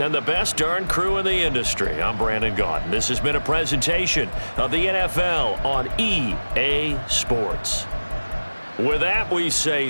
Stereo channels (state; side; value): inverted; both; correlation -1.00